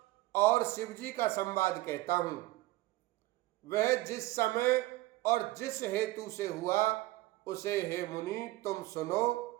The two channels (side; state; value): left; quieter; 18.5 dB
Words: और शिव जी का संवाद कहता हूं। वह जिस समय और जिस हेतु से हुआ उसे हे मुनि तुम सुनो,